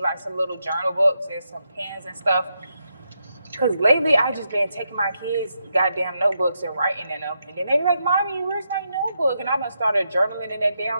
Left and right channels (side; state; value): both; inverted; correlation -0.83